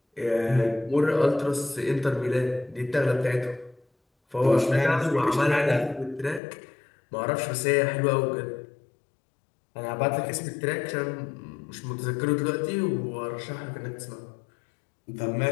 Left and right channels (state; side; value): drops out; right; at 6.4 s